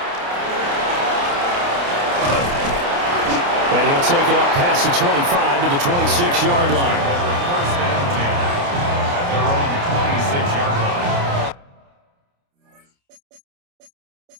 And he'll take it up past the 25 to the 26-yard line.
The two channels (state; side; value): late; left; 29 ms